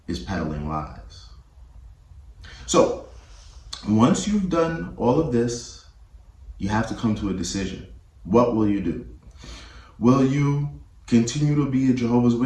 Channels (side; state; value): both; identical; correlation 1.00